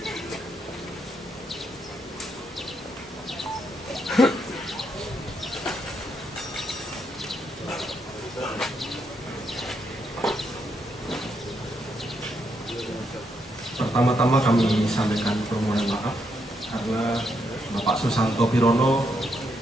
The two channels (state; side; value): normal; both; correlation 0.78